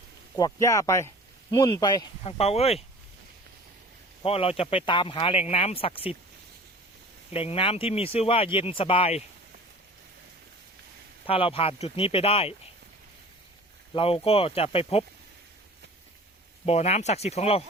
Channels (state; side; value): normal; both; correlation 0.44